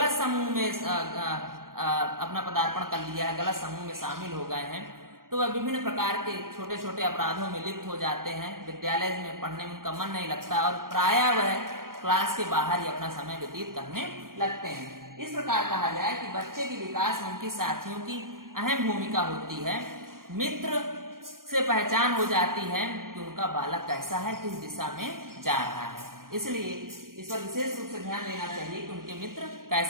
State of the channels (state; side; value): late; left; 0.91 ms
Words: समूह में अपना पदार्पण कर लिया है, गलत समूह में शामिल हो गए हैं, तो वह विभिन्न प्रकार के छोटे छोटे अपराधों में लिप्त हो जाते हैं, विद्यालय में पढ़ने में उनका मन नहीं लगता और प्रायः वह क्लास के बाहर ही अपना समय व्यतीत करने लगते हैं। इस प्रकार कहा जाए कि बच्चे के विकास में उनके साथियों की अहम भूमिका होती है। मित्र से पहचान हो जाती है कि उनका बालक कैसा है, किस दिशा में जा रहा है। इसलिए इस पर विशेष रूप से ध्यान देना चाहिए कि उनके मित्र